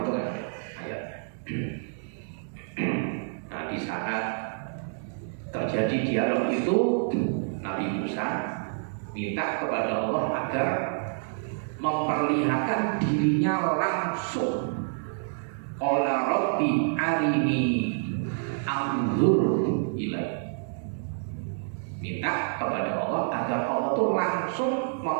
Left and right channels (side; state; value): left; silent; digital silence